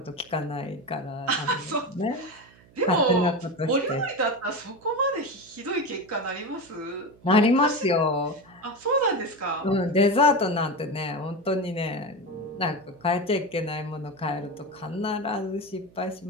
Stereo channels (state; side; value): noise; right; hum, 27 dB below the sound